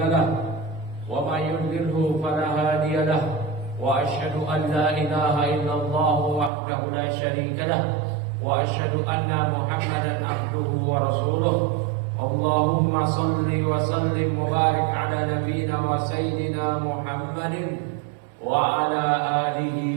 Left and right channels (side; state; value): left; drops out; at 6.5 s